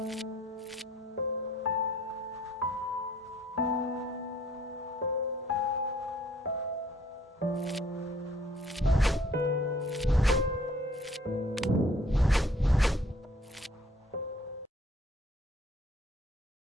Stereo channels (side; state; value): both; normal; correlation 0.59